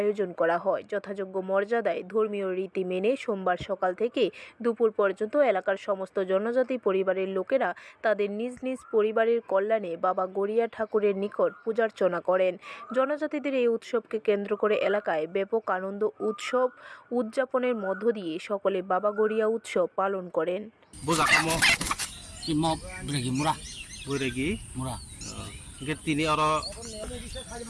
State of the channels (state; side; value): identical; both; correlation 1.00